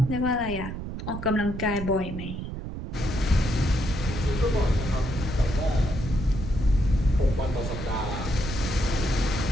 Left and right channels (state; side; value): noise; right; rumble, 7 dB below the sound